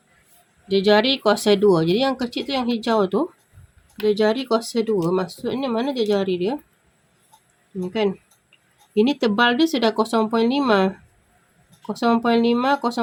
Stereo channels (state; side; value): identical; both; correlation 1.00